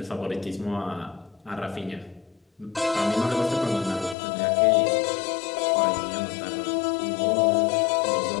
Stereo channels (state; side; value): drops out; right; at 4.2 s